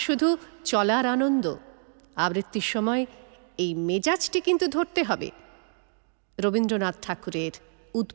শুধু চলার আনন্দ। আবৃত্তির সময় এই মেজাজটি কিন্তু ধরতে হবে। রবীন্দ্রনাথ ঠাকুরের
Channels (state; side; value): silent; left; 60 dB below the other